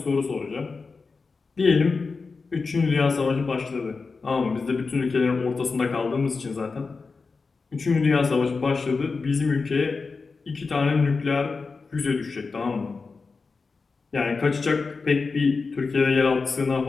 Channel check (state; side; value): quieter; right; 4.4 dB